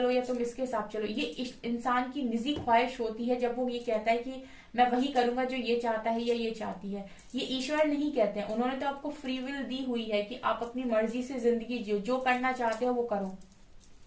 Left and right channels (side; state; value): both; identical; correlation 1.00